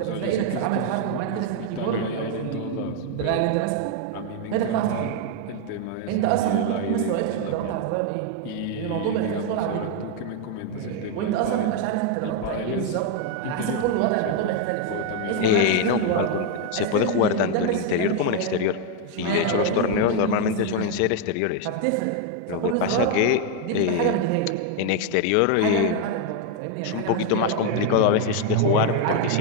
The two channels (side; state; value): both; different; correlation 0.01